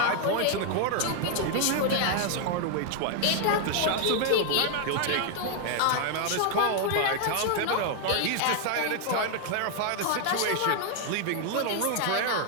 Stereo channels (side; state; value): both; different; correlation 0.00